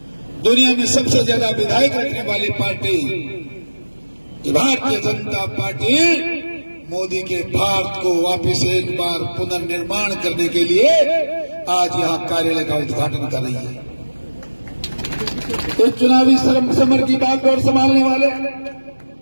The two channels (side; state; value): both; inverted; correlation -1.00